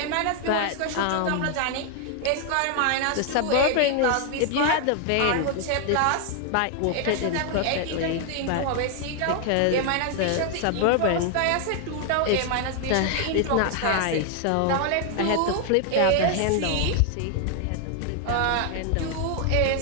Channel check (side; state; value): both; different; correlation 0.00